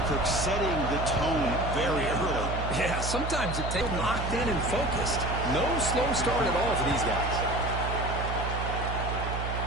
Kirk, setting the tone very early. Yeah, sometimes it takes locked in and focused. No slow start at all for these guys.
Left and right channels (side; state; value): right; noise; hum, 3 dB below the sound